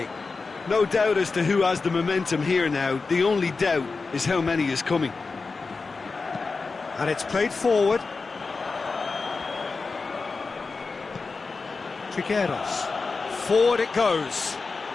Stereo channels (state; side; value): quieter; right; 4.2 dB